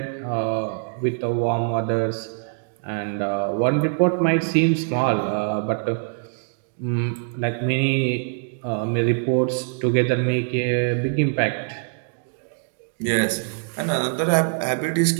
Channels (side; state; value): left; silent; digital silence